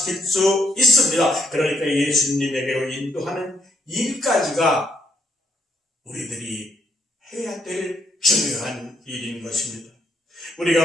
수 있습니다. 그러니까 예수님에게로 인도하는 일까지가 우리들이 해야 될 중요한 일인 것입니다.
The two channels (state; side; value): normal; both; correlation 0.73